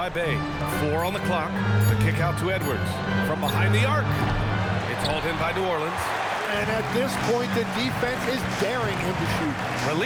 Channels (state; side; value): identical; both; correlation 1.00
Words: Bay. 4 on the clock. The kick out to Edwards. From behind the arc. It's hauled in by New Orleans. And at this point, the defense is daring him to shoot.